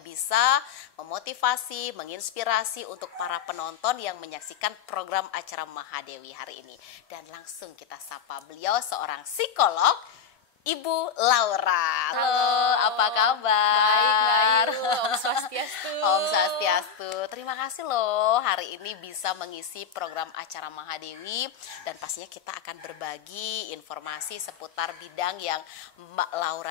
bisa memotivasi, menginspirasi untuk para penonton yang menyaksikan program acara Mahadewi hari ini. Dan langsung kita sapa beliau, seorang psikolog, Ibu Laura. Halo, apa kabar? Baik, baik. Om Swastiastu. Om Swastiastu. Terima kasih loh hari ini bisa mengisi program acara Mahadewi, dan pastinya kita akan berbagi informasi seputar bidang yang Mbak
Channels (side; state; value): right; quieter; 7.0 dB